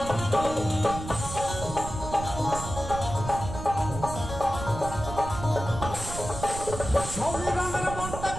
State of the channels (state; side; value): noise; right; rumble, 8 dB below the sound